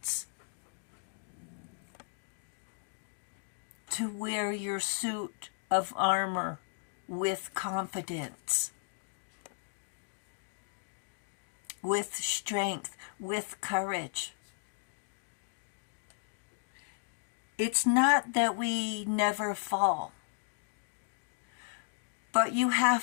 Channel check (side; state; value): right; silent; digital silence